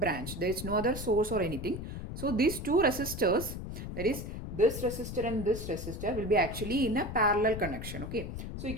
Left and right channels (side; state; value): left; noise; rumble, 7 dB below the sound